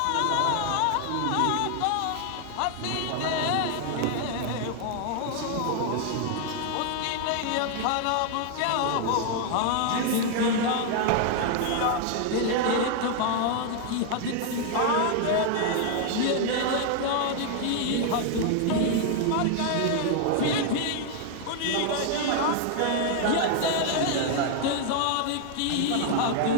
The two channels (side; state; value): both; different; correlation 0.00